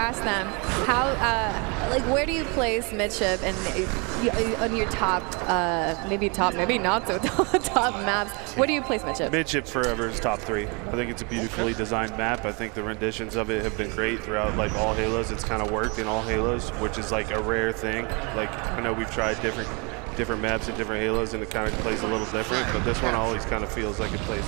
them how, like, where do you place Midship and on your top, maybe not so top maps? Where do you place Midship? Midship forever is top 3. I think it's a beautifully designed map. I think the renditions of it have been great throughout like all Halos. It's kind of worked in all Halos, which is like a rare thing. Like I know we've tried different maps and different Halos, and it kind of plays a little different, but this one always kind of feels like it plays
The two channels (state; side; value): quieter; left; 31.4 dB